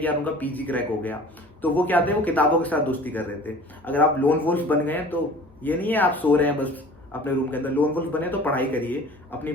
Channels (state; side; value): normal; both; correlation 0.45